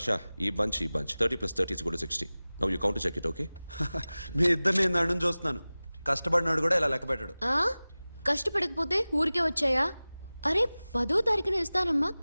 ఈ bunch 30 plus 30 is equal to 60. Now you count to check it, okay? మీ ఇద్దరిని నేను అడ్డం చూస్తున్నాను. కష్టపడినాడు కూడా ఇలా లెక్క పెట్టాడు. కష్టపడకపోతే ఊరికే వచ్చాయా? అరే 10వ తారీఖున ఇస్తానమ్మా,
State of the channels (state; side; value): inverted; both; correlation -0.98